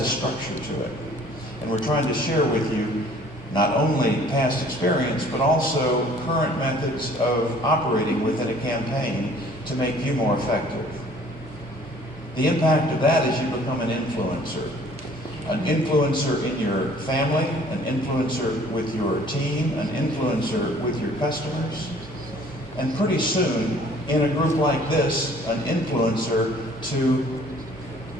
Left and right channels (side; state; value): both; normal; correlation 0.54